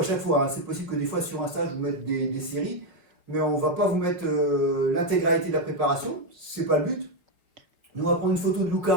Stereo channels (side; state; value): left; late; 4.7 ms